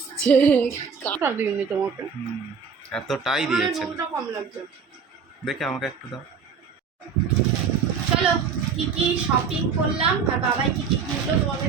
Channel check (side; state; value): left; quieter; 5.9 dB